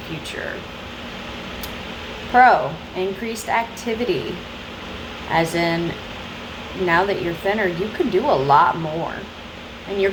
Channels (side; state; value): both; identical; correlation 1.00